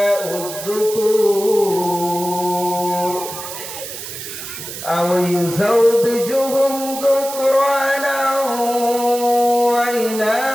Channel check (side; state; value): right; noise; hiss, 9 dB below the sound